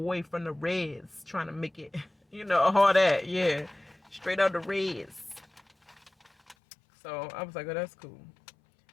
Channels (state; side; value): drops out; right; at 6.6 s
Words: from the Reds trying to make it, all that. Yeah, straight out the Reds. So I was like, oh, that's cool.